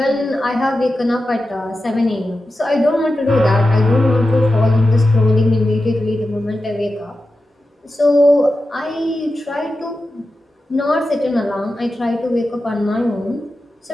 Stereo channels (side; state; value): both; normal; correlation 0.92